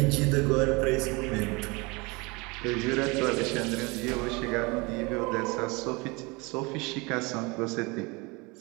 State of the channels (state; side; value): quieter; left; 26.7 dB